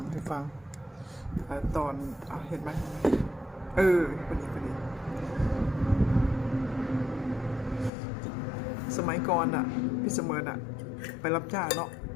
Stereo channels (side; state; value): right; drops out; at 7.9 s